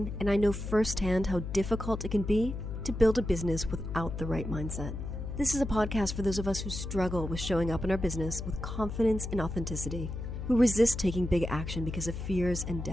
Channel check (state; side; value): noise; left; hum, 6 dB below the sound